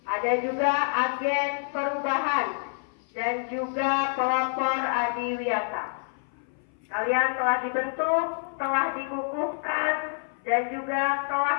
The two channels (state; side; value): silent; right; 57 dB below the other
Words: Ada juga agen perubahan dan juga pelopor adiwiyata. Kalian telah dibentuk, telah dikukuhkan, dan juga